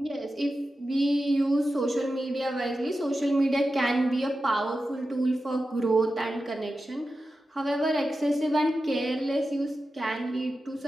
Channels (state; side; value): normal; both; correlation 0.92